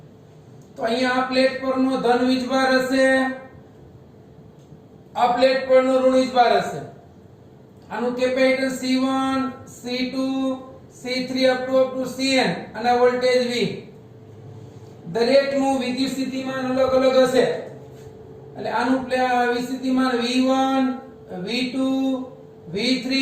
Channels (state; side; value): identical; both; correlation 1.00